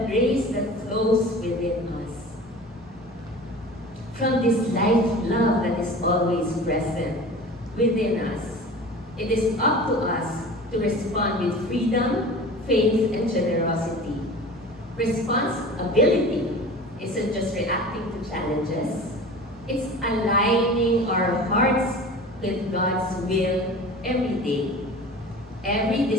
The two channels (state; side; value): normal; both; correlation 0.38